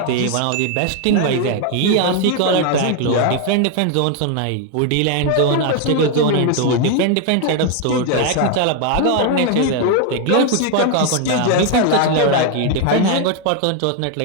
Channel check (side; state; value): both; different; correlation 0.01